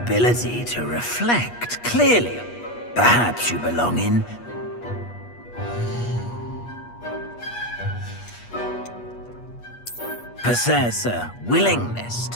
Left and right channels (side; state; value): right; late; 8.4 ms